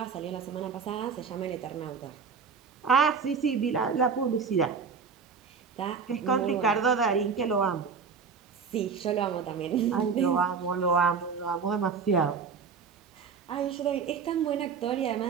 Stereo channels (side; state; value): left; quieter; 5.7 dB